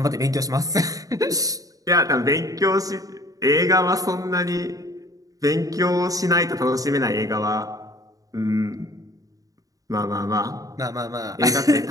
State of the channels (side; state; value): left; late; 0.17 ms